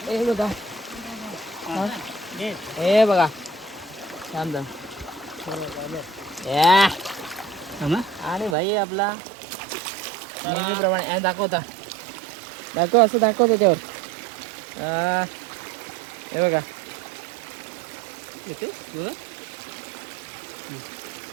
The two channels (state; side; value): drops out; left; at 8.6 s